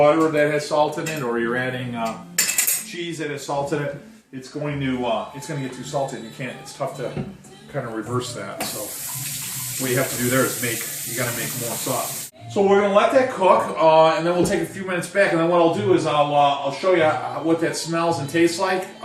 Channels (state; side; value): identical; both; correlation 1.00